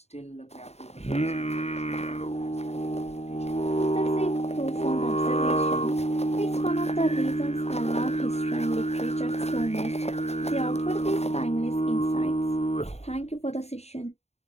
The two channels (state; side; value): late; right; 0.31 ms